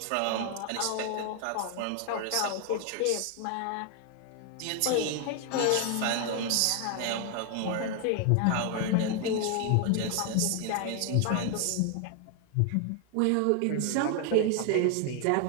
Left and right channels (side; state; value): both; different; correlation 0.00